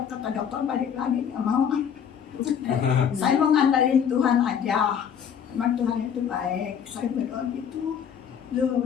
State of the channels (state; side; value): quieter; right; 8.0 dB